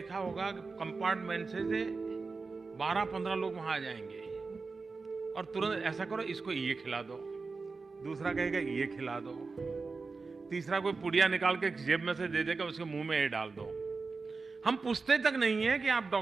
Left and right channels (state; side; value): quieter; left; 4.2 dB